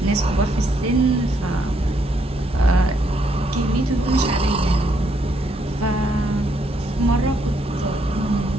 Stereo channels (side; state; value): both; normal; correlation 0.73